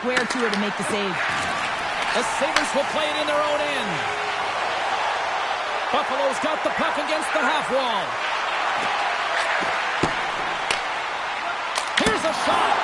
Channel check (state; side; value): noise; left; rumble, 29 dB below the sound